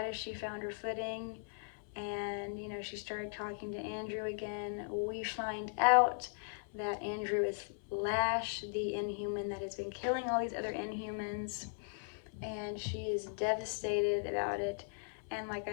as she found her footing, and she started talking to Andrew again, we find out that Andrew is Lash, the Inhuman that has been killing all these other Inhumans, and she is devastated about it. And like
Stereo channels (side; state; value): right; silent; 52 dB below the other